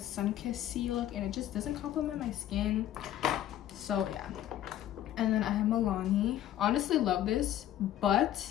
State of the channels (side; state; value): right; quieter; 12.1 dB